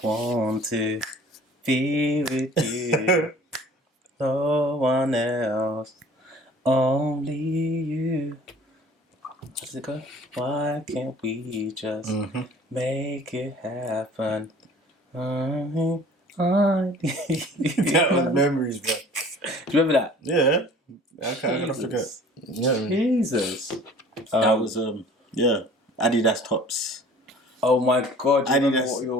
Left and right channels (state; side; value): normal; both; correlation 0.48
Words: want to be with you. No one else. Only you. How does it go? Why can't we just make it happen? That was memories, bro. Do you remember that? Yeah. Okay, I'm gonna forget. Yeah. Jesus. That was Adidas tops. Oh my God! You remember Adidas, what you were